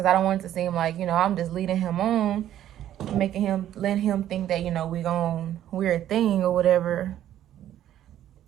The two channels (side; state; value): left; quieter; 11.8 dB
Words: I don't want it to seem like, I'm just leading him on, letting him think that, we're a thing or whatever,